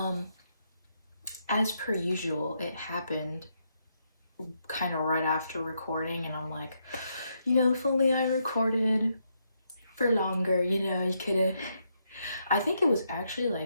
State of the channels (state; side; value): inverted; both; correlation -0.78